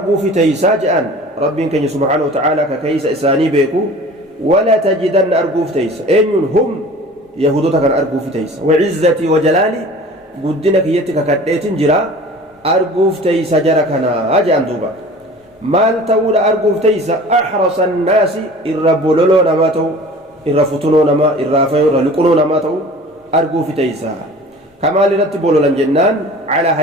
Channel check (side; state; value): both; normal; correlation 0.43